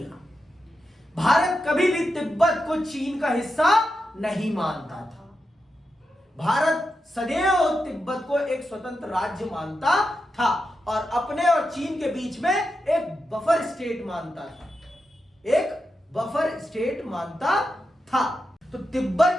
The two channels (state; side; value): normal; both; correlation 0.88